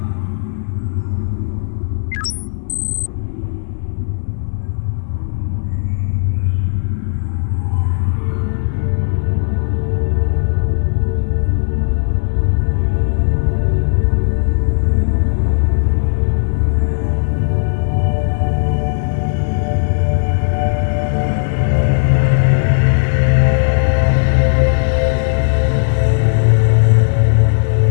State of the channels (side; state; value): right; silent; digital silence